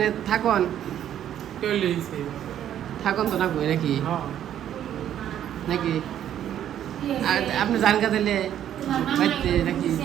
থাকুন থাকুন তো থাকবো নাকি নাকি আর আপনি জান কা দিলে বাড়িতে নাকি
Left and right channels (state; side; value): quieter; left; 10.6 dB